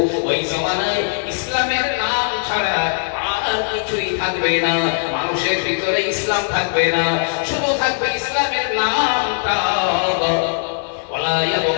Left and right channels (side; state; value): right; silent; 66 dB below the other